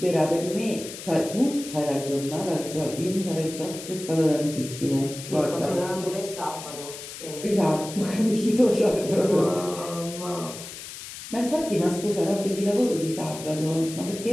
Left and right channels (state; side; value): noise; left; hiss, 12 dB below the sound